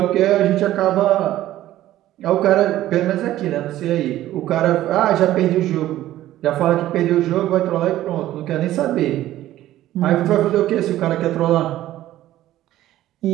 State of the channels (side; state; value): left; quieter; 14.1 dB